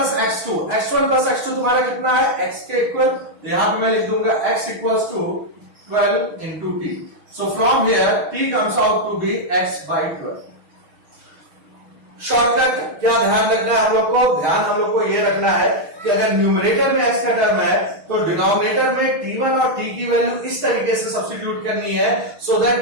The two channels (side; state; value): left; late; 6.3 ms